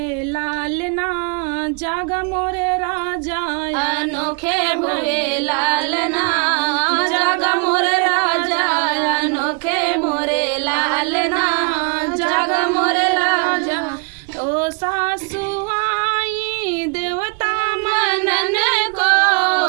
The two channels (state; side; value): quieter; left; 35.7 dB